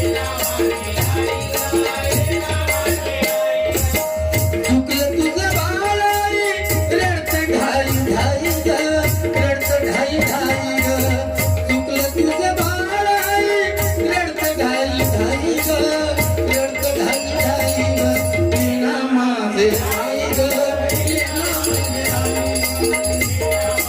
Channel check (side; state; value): both; identical; correlation 1.00